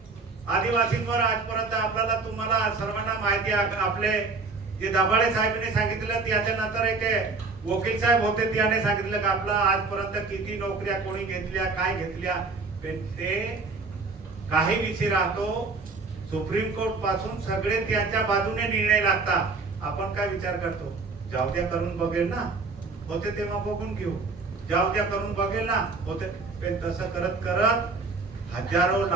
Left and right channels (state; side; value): quieter; left; 4.0 dB